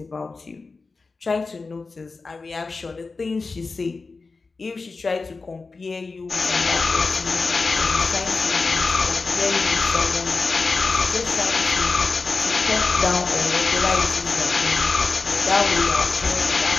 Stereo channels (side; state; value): right; quieter; 4.1 dB